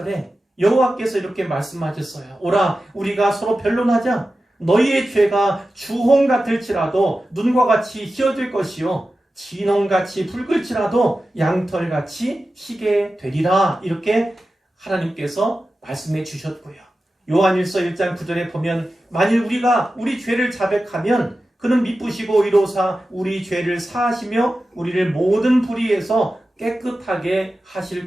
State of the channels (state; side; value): normal; both; correlation 0.93